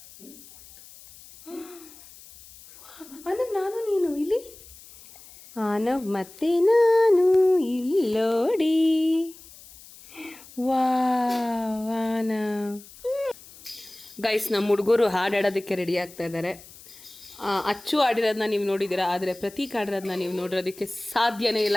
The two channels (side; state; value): left; noise; hiss, 20 dB below the sound